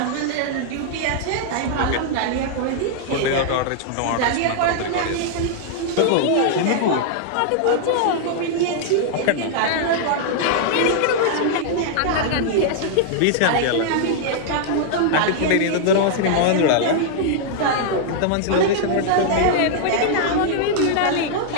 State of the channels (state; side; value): different; both; correlation -0.01